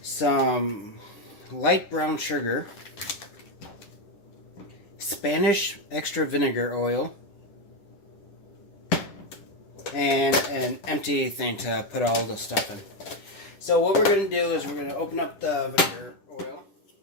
some light brown sugar, Spanish extra vinegar oil, and an empty thing to put all the stuff in. So what we're going to do is we're going to open up the vinegar oil.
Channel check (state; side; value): late; right; 10 ms